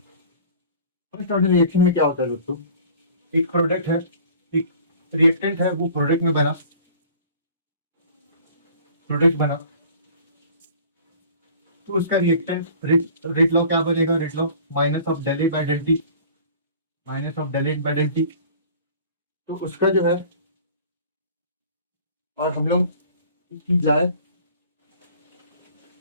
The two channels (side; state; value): both; inverted; correlation -0.47